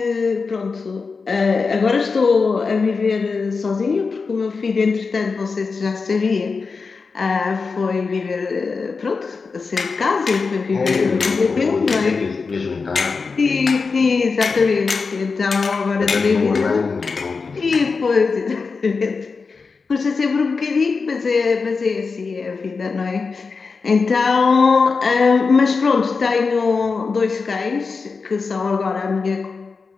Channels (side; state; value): right; quieter; 4.7 dB